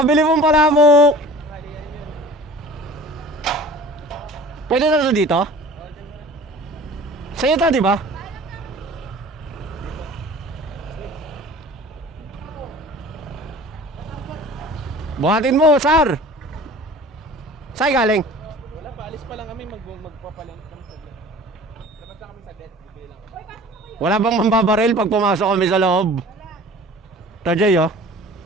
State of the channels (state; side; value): normal; both; correlation 0.44